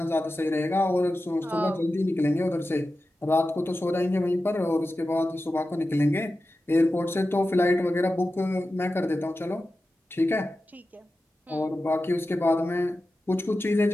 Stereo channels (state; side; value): normal; both; correlation 0.93